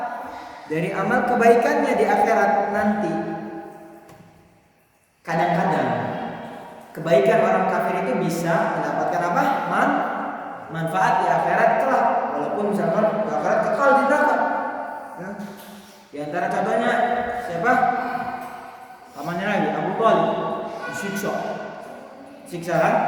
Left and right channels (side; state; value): both; identical; correlation 1.00